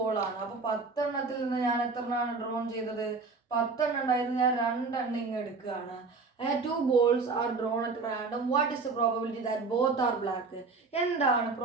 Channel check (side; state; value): left; quieter; 4.2 dB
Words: അപ്പൊ 10 എണ്ണത്തിൽ നിന്ന് ഞാൻ എത്ര എണ്ണമാണ് ഡ്രോൺ ചെയ്തത്? 10 എണ്ണം ഉണ്ടായിരുന്നു, ഞാൻ 2 എണ്ണം ഇങ്ങ് എടുക്കുകയാണ്. 2 balls are drawn at random. What is the probability that both are black? എന്താണ്